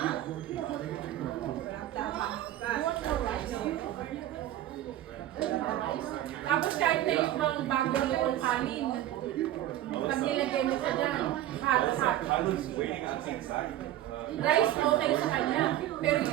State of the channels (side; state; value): left; quieter; 13.4 dB